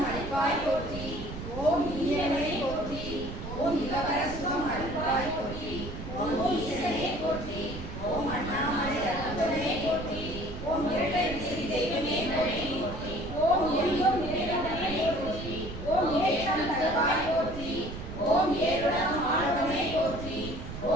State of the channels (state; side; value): noise; right; rumble, 9 dB below the sound